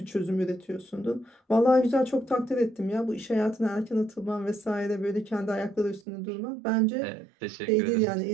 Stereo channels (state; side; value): drops out; left; at 6.0 s